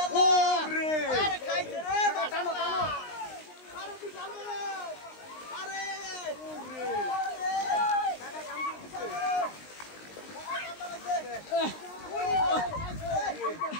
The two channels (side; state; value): right; late; 19 ms